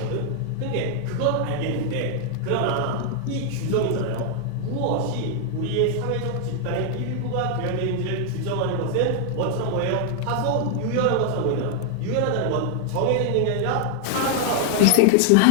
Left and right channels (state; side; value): different; both; correlation 0.00